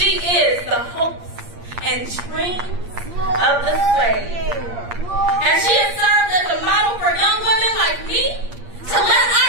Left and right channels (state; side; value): late; left; 8.6 ms